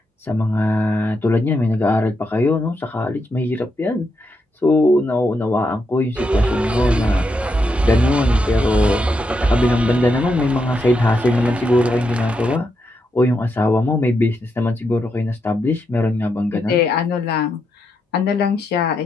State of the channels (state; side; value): normal; both; correlation 0.82